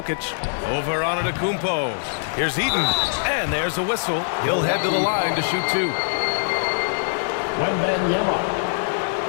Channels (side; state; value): right; silent; digital silence